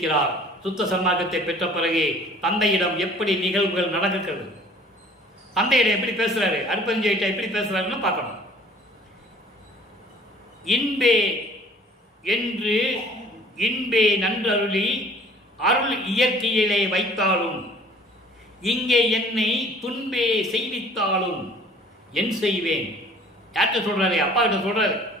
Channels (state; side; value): normal; both; correlation 0.52